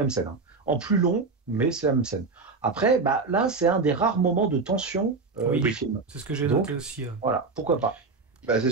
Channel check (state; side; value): quieter; left; 4.2 dB